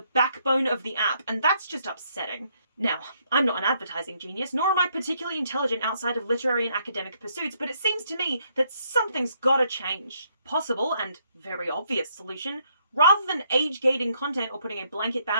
backbone of the app, and that's just upsetting. Now, I'm not an advertising genius, nor am I particularly intelligent outside of literary and academic pursuits, but it seems to me that something's gotta change. Possible, and very obvious solution, rather than age-gating content or putting a blanket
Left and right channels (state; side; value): inverted; both; correlation -0.71